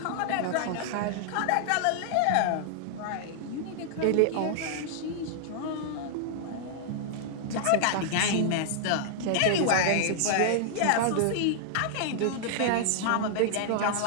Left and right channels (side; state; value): both; different; correlation -0.01